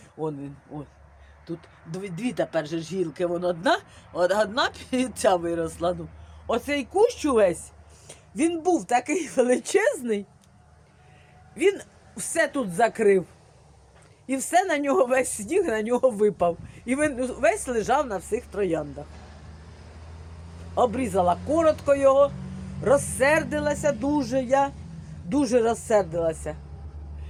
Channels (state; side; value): identical; both; correlation 1.00